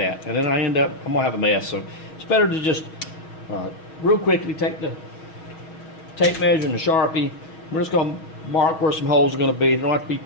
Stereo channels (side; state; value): right; late; 6.3 ms